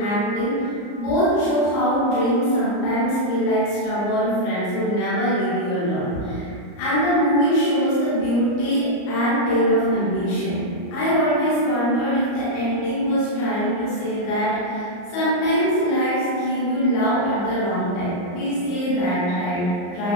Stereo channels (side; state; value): right; late; 34 ms